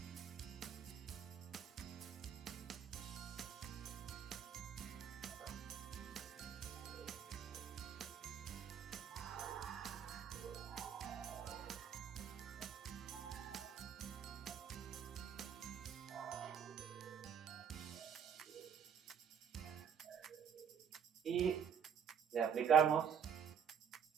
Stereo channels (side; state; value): left; quieter; 7.5 dB